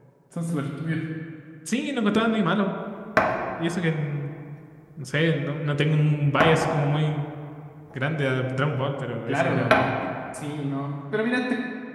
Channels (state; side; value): identical; both; correlation 1.00